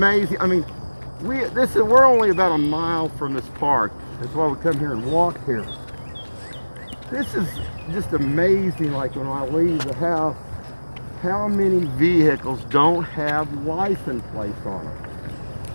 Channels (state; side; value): inverted; both; correlation -1.00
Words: I mean, we're only about a mile from this park. That's why we come here and walk here. This is just amazing. Like when I leave the house, how many vehicles don't have license plates on them?